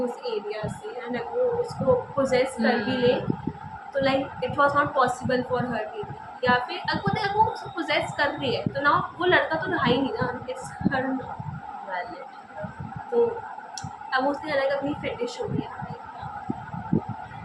उस एरिया से एंड अगर वो उसको पोजेस कर भी ले तो like it was not possible for her to, या फिर अगर वो उसको पोजेस कर रही है तो ना वो लड़का तो रहा ही नहीं ना, इट्स हर वैलिड। तो अब उसने अलग अपनी फेटिश हो गया।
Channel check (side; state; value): both; identical; correlation 1.00